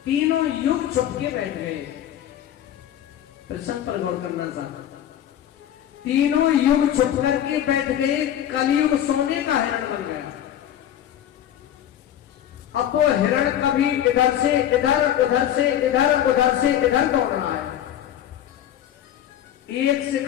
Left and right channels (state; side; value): quieter; right; 11.0 dB